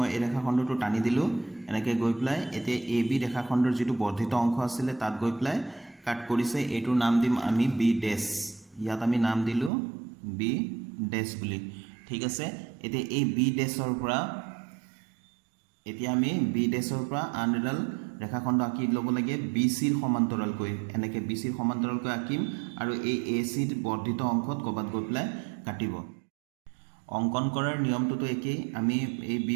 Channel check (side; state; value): left; drops out; at 9.7 s